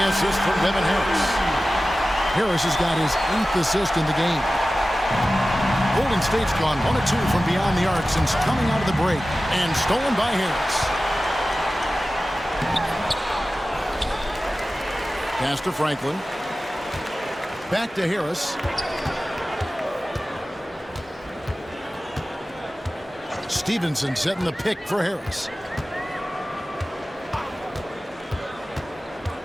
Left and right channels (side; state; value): both; normal; correlation 0.96